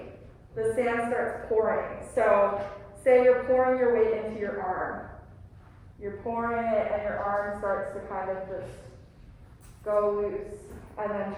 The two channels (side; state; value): both; identical; correlation 1.00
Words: the sand starts pouring. So say you're pouring your weight into your arm. You're pouring it and your arm starts to kind of just go loose. And then